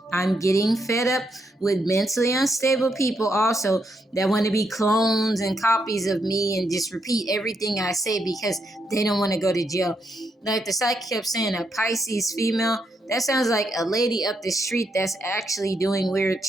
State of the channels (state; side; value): normal; both; correlation 0.79